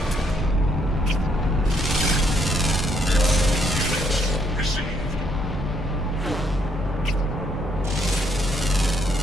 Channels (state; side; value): normal; both; correlation 0.71